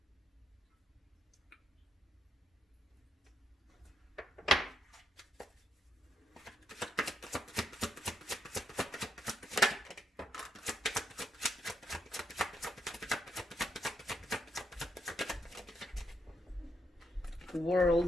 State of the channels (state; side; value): normal; both; correlation 0.78